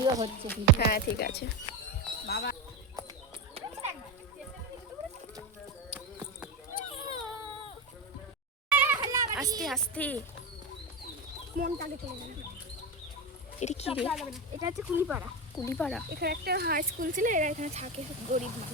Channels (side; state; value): both; normal; correlation 0.16